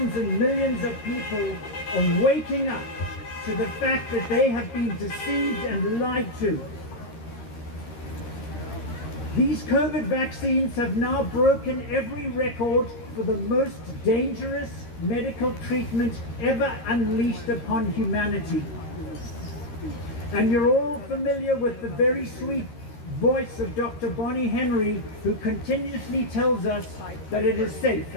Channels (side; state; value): right; late; 13 ms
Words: and millions of people are waking up to the fact that they have been deceived and lied to. These COVID vaccines have now broken every record for the most dangerous medical treatment ever unleashed upon humanity. And you're all familiar with the very sweet voice of Dr. Bonnie Henry, who continuously tells us that it is safe